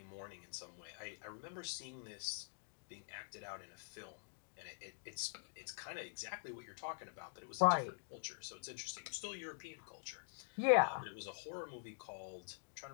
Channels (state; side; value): silent; right; digital silence